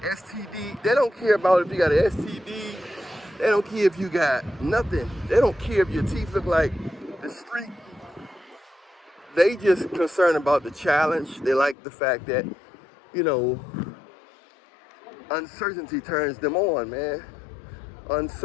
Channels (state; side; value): drops out; right; at 11.8 s